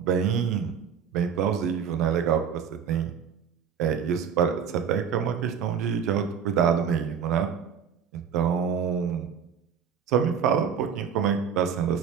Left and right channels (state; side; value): quieter; left; 7.4 dB